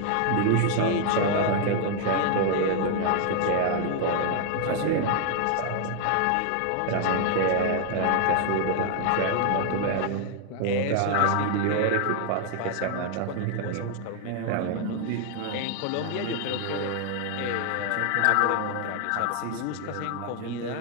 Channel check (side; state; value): both; different; correlation 0.00